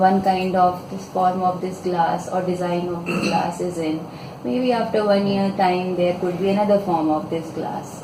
kind of this form of this glass or design of this glass is in. Maybe after 1 year time there could be another form of this glass.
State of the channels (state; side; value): identical; both; correlation 1.00